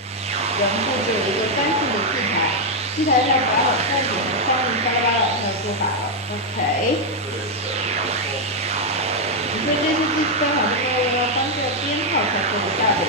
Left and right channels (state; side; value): normal; both; correlation 0.00